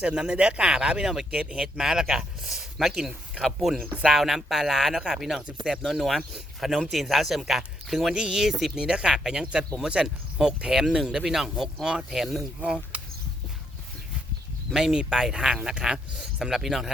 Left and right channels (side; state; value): both; normal; correlation 0.75